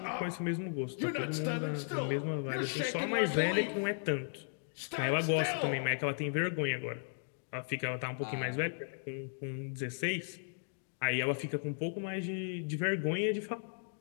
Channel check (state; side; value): silent; right; digital silence